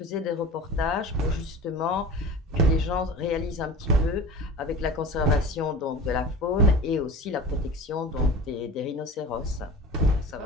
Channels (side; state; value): both; normal; correlation 0.36